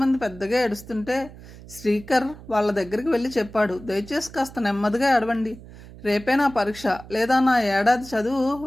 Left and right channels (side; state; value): right; noise; hum, 18 dB below the sound